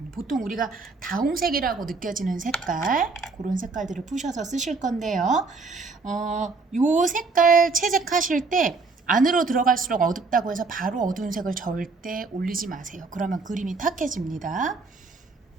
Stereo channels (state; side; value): quieter; left; 4.1 dB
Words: 보통 우리가 다홍색이라고 느껴지는 색깔, 그런 색깔들을 푸셔서 쓰실 건데요. 요 색깔 채색하실 때 안으로 들어갈수록 어둡다고 해서 바로 어두운 색을 절대 올리지 마세요. 그러면 그림이 탁해집니다.